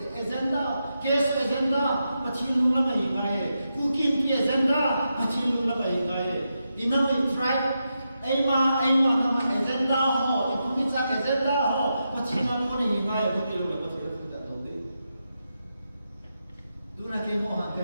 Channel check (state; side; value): inverted; both; correlation -0.87